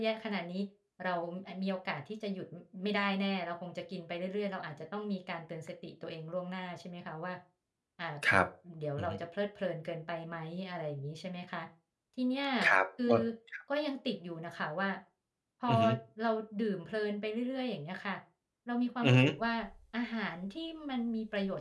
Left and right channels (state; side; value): identical; both; correlation 1.00